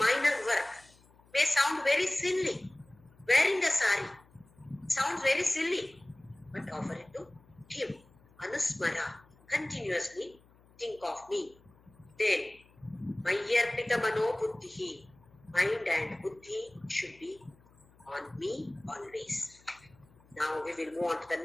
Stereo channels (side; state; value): left; noise; hum, 28 dB below the sound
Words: work. May sound very silly. Wearing a sari sounds very silly. But offer it to him. Anusmara. Continuously think of me. Then, Mayarpita Mano Buddhihi. Mind and Buddhi should be on me always. Now we will move on to the